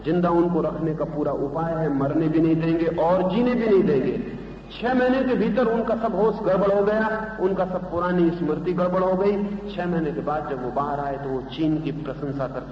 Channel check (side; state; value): both; identical; correlation 1.00